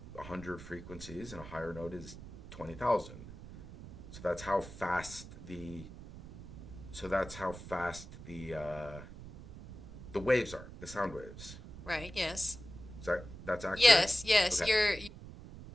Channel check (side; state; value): right; noise; rumble, 14 dB below the sound